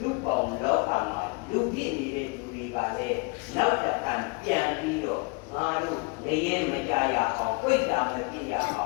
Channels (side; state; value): right; quieter; 29.6 dB